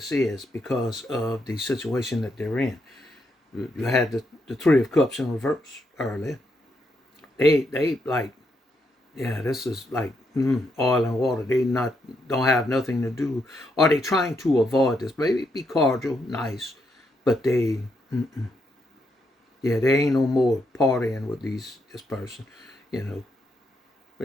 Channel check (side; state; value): both; normal; correlation 0.79